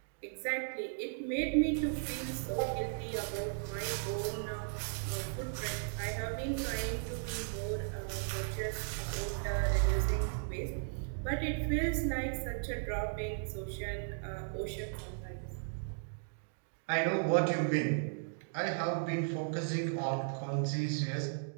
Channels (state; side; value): silent; left; digital silence